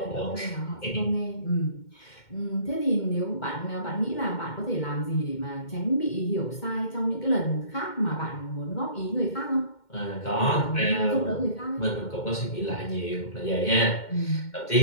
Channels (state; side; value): late; right; 2.1 ms